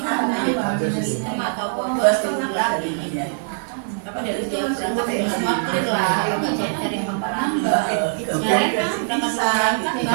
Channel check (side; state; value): left; silent; digital silence